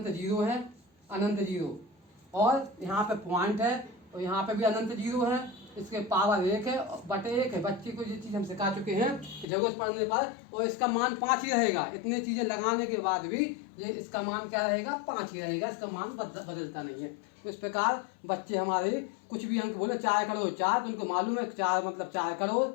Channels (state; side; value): drops out; right; at 9.5 s